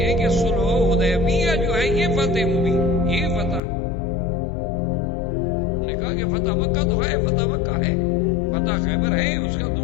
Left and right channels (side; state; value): right; drops out; at 3.6 s